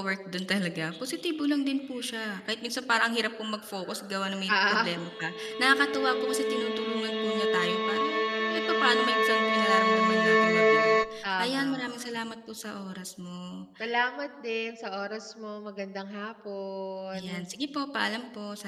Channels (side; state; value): both; identical; correlation 1.00